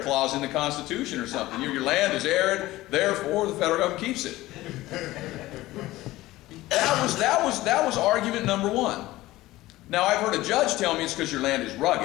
clause in the Constitution or something. Your land is arid, therefore the federal government keeps it. That was argument number one. Now I've heard a judge tell me it's because your land is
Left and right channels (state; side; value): quieter; right; 17.4 dB